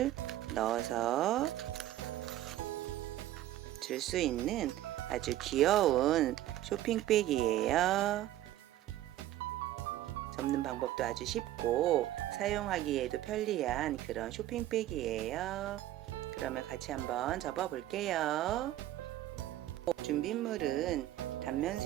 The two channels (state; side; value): quieter; left; 13.9 dB